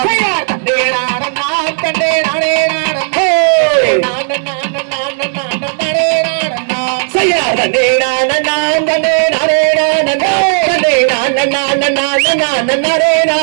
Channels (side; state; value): left; silent; digital silence